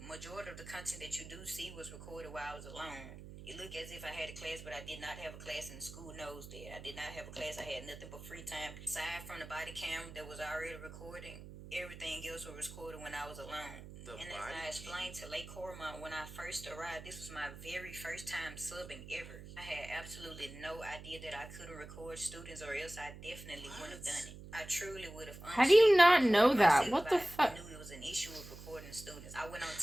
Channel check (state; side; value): noise; right; hum, 14 dB below the sound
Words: Majority of the content that you do see was recorded while I was alone. It looked as if I had a class, but I did not have a class, and the school knows that. I did not have a class. I had nothing but free time. Aside from the body cam that was already recording, everything else was recorded when I was alone. And as I explained to Lake Cormont when I first arrived, this was my very first time subbing ever. I had absolutely no idea that I couldn't record students, or else I definitely wouldn't have done it. I truly would have. How do you not know that? What the fuck? I knew it was an issue with recording students. I went on